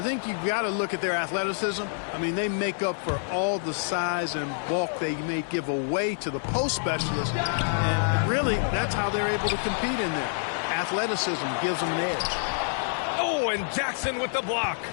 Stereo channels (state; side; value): silent; right; 60 dB below the other